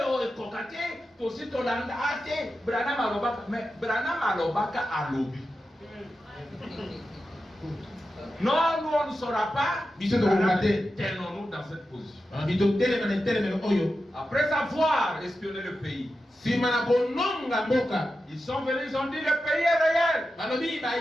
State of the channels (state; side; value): normal; both; correlation 0.90